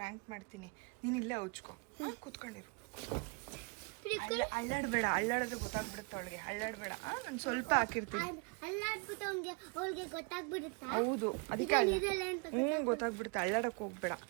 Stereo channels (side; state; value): left; quieter; 31.9 dB